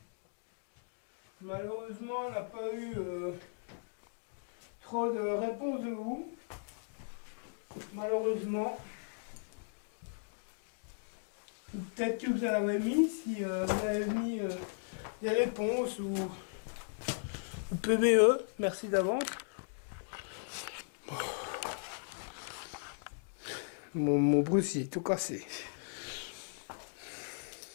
malheureusement, on n'a pas eu trop de réponses de vous. Malheureusement. Ou peut-être que vous en avez mis, si vous avez mis des réponses ou PBE. Merci d'avance. Mon Bruce, il est tout cassé.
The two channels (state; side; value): silent; right; digital silence